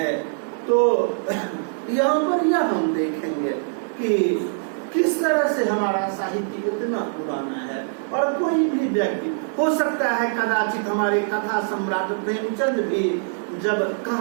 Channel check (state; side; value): silent; left; 63 dB below the other